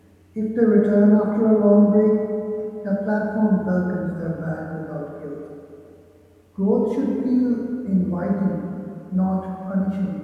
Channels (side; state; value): both; identical; correlation 1.00